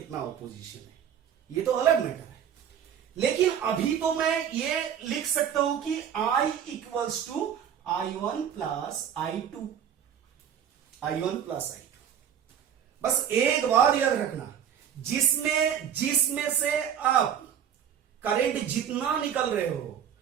ऑपोजिशन है, ये तो अलग मैटर है। लेकिन अभी तो मैं ये लिख सकता हूं कि I equals to I1 plus I2, बस एक बात याद रखना, जिसमें से आप करंट जितना निकल रहे हो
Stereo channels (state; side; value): quieter; left; 8.9 dB